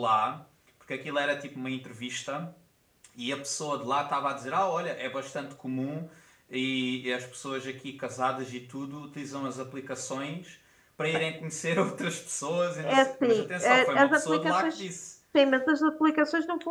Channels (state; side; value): identical; both; correlation 1.00